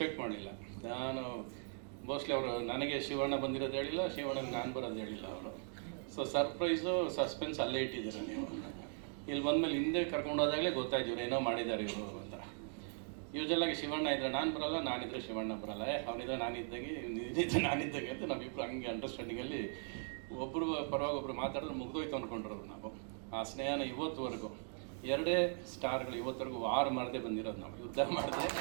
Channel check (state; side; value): silent; left; 51 dB below the other